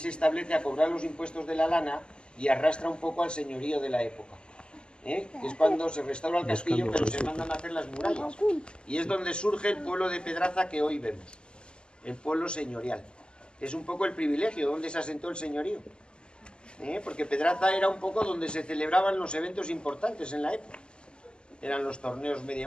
establece a cobrar los impuestos de la lana y arrastra un poco al señorío de la época. Que es cuando se restaura el castillo, pero se mandan a hacer las murallas. Y es donde surge el pueblo de Pedraza que hoy vemos, el pueblo señorial. Es un poco el privilegio donde se asentó el señorío. Porque Pedraza era un poco donde se celebraban los eventos importantes en la época. Eran los torneos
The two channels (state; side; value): late; right; 0.050 ms